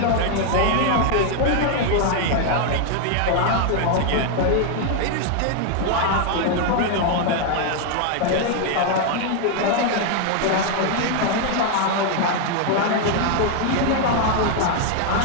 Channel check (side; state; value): both; different; correlation 0.01